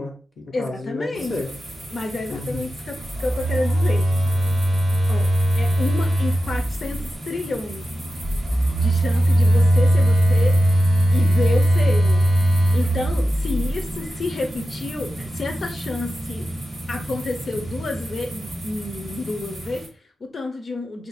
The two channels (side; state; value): both; normal; correlation 0.92